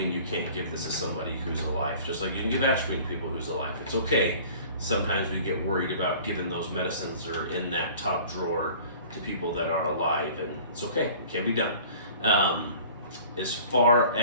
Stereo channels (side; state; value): both; inverted; correlation -0.47